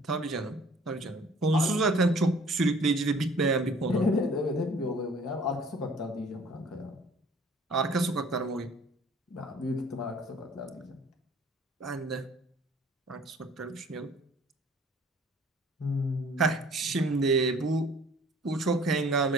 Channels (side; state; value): both; normal; correlation 0.53